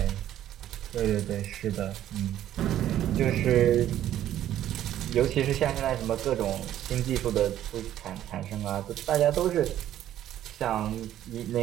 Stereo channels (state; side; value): quieter; left; 12.0 dB